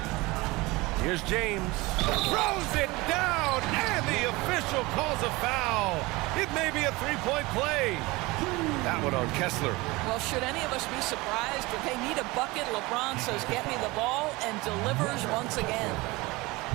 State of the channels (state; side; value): quieter; left; 22.4 dB